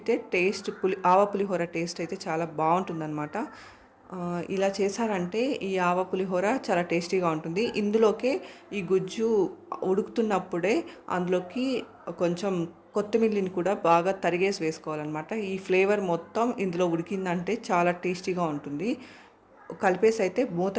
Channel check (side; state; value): both; identical; correlation 1.00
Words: టేస్ట్ ఆవ పులిహోర టేస్ట్ అయితే చాలా బాగుంటుందన్నమాట. ఇలా చేశారంటే ఈ ఆవ పులిహోర చాలా టేస్టీగా ఉంటుంది. ఇందులోకే ఈ గుజ్జు ఉడుకుతున్నప్పుడే అందులోకి కొంచెం కొత్తిమీరని కూడా బాగా తరిగేసి వేసుకోవాలన్నమాట. ఈ ఫ్లేవర్ మొత్తం ఇందులో ఉడికిందంటే చాలా టేస్టీగా ఉంటుంది. కలిపేసి అయితే మూత